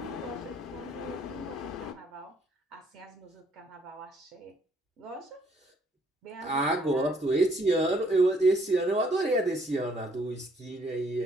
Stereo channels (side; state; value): both; normal; correlation 0.65